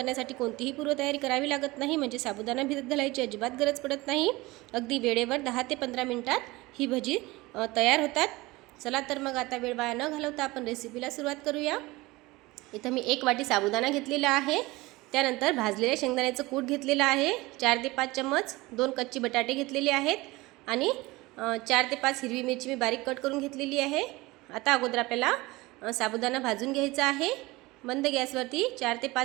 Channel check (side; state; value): left; quieter; 21.2 dB